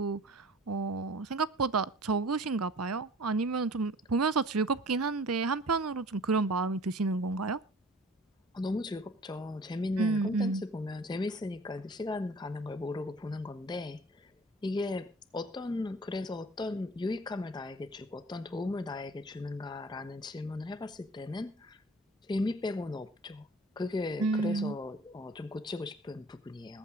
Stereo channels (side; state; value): both; normal; correlation 0.47